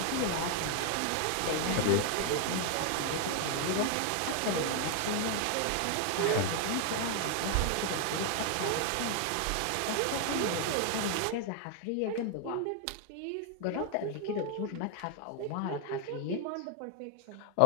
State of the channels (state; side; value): different; both; correlation 0.00